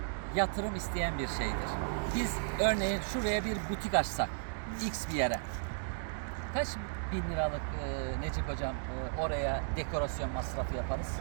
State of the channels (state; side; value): silent; left; digital silence